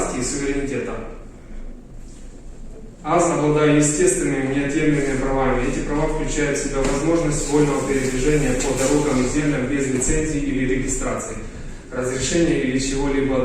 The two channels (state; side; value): identical; both; correlation 1.00